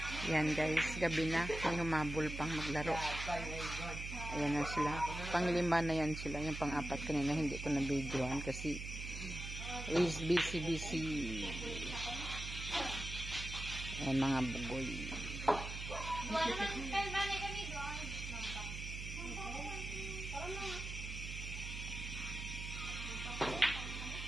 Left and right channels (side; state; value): right; noise; hum, 7 dB below the sound